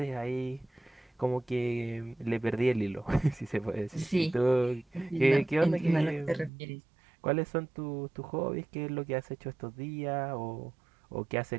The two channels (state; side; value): drops out; left; at 6.5 s